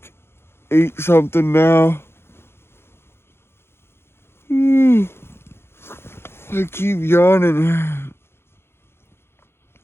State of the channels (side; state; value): right; late; 0.12 ms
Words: 8 something now. I keep yawning.